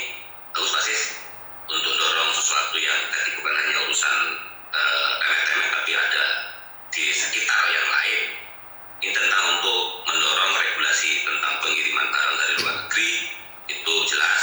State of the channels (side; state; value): both; identical; correlation 1.00